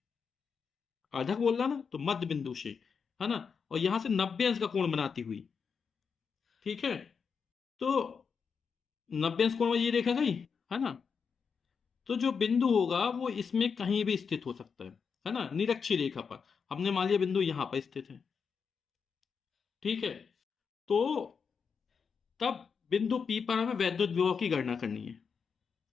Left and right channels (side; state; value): right; quieter; 6.0 dB